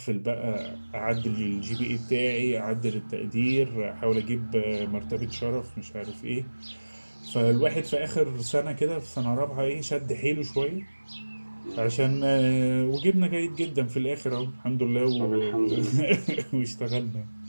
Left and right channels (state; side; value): inverted; both; correlation -1.00